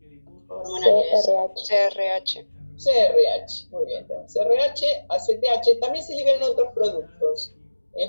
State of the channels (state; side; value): inverted; both; correlation -1.00